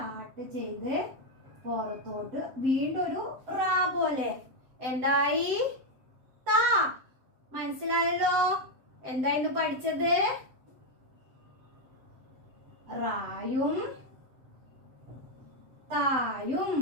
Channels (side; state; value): left; late; 7.7 ms